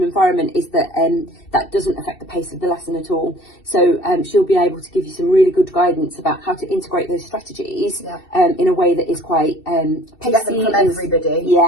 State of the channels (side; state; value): right; late; 2.7 ms